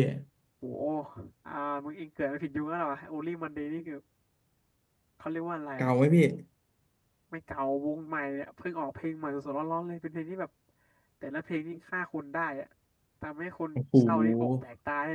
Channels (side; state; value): both; identical; correlation 1.00